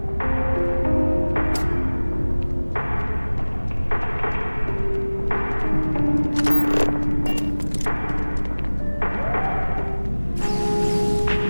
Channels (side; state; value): both; inverted; correlation -1.00